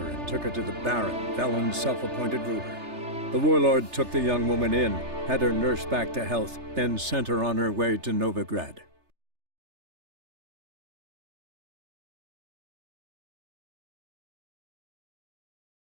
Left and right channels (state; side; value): late; left; 3.3 ms